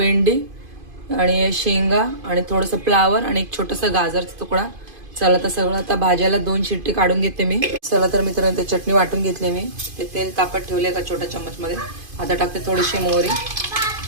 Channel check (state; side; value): late; left; 2.5 ms